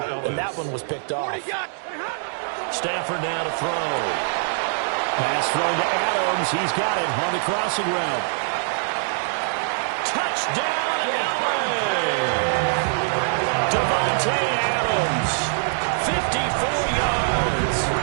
And that one was picked off. Stafford now to throw. Pass thrown to Adams. He's got it on the crossing route. Touchdown, LA! Devontae Adams, 54 yards.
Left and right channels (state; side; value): silent; left; 63 dB below the other